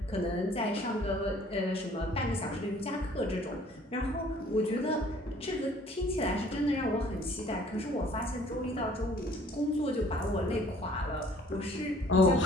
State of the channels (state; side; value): normal; both; correlation 0.56